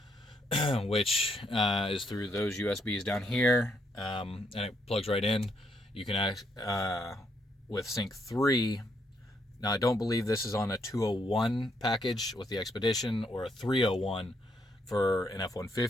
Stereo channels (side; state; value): both; normal; correlation 0.74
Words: which is through those USBs down here, and it plugs right in. You can with Sync 3. Now, I don't believe this is on a 201 package with the Expedition or a 301 for an